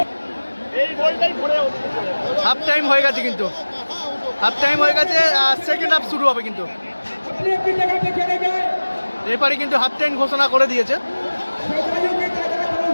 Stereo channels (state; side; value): inverted; both; correlation -1.00